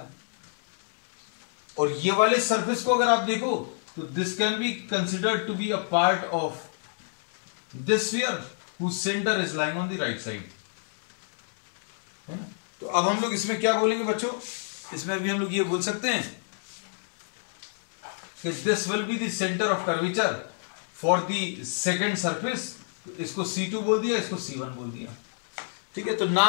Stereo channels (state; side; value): silent; right; 60 dB below the other